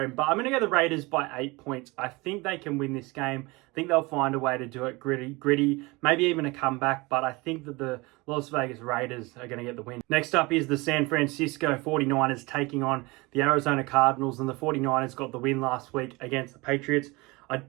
But I'm going to go the Raiders by 8 points. I think they can win this game. I think they'll find a way to do it gritty, maybe even a comeback. But I think that the Las Vegas Raiders are going to get the win. Next up is the San Francisco 49ers taking on the Arizona Cardinals. And the 49ers got the win last week against the Patriots. I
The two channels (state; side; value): quieter; left; 24.1 dB